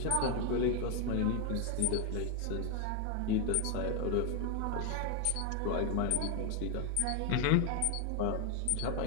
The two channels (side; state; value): both; different; correlation 0.01